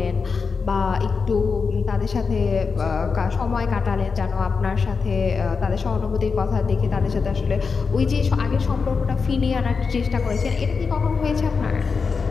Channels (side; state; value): right; quieter; 5.1 dB